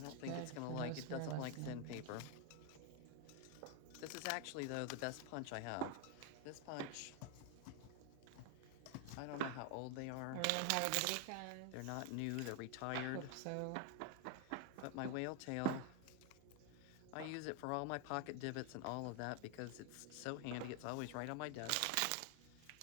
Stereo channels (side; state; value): both; different; correlation 0.01